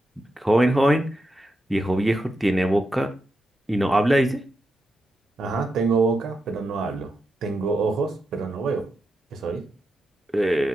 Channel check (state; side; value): normal; both; correlation 0.87